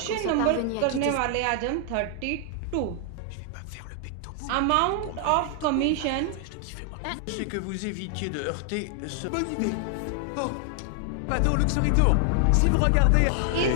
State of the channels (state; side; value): different; both; correlation 0.00